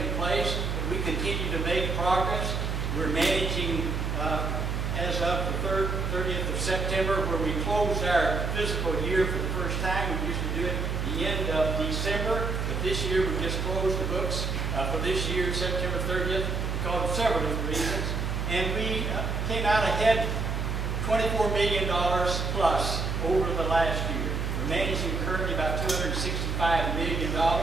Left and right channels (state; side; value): noise; right; hum, 1 dB below the sound